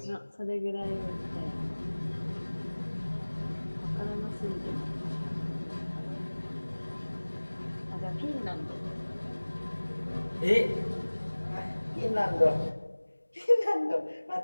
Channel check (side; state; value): both; inverted; correlation -1.00